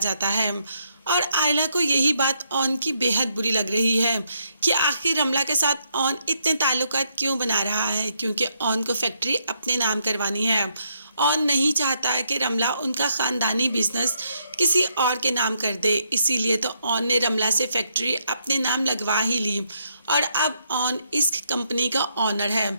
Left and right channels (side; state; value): both; inverted; correlation -0.76